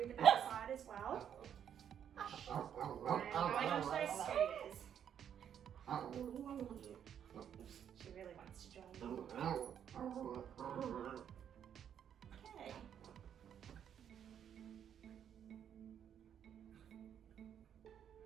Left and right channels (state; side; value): quieter; left; 9.0 dB